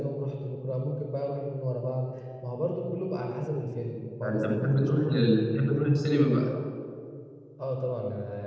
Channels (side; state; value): both; identical; correlation 1.00